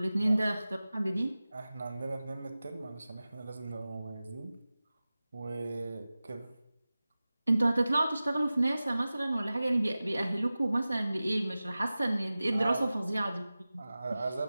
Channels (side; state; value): both; inverted; correlation -0.96